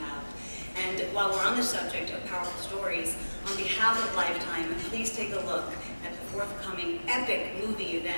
And while we're on the subject of powerful stories, on behalf of Lifetime, please take a look at the forthcoming epic movie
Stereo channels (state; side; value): inverted; both; correlation -1.00